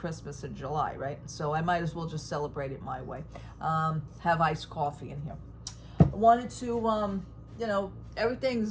in July, right? So I might as well just celebrate it my way. Have iced coffee in here. I wanted to,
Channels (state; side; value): identical; both; correlation 1.00